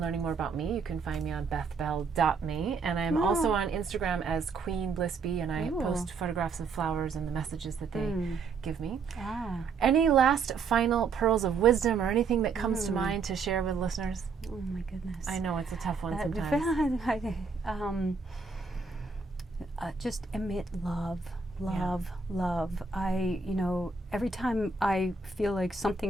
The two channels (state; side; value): quieter; left; 4.8 dB